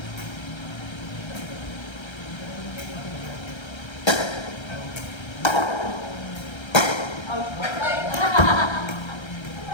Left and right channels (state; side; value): late; right; 1.3 ms